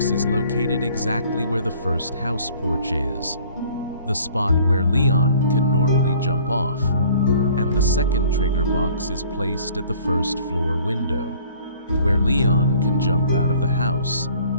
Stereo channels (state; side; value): inverted; both; correlation -0.53